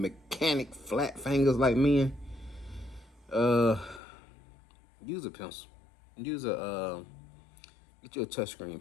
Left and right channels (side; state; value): right; drops out; at 4.0 s